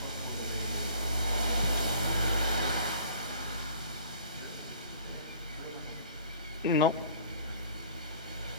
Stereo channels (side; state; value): both; inverted; correlation -0.51